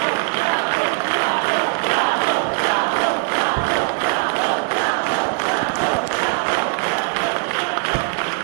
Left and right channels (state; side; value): quieter; left; 37.4 dB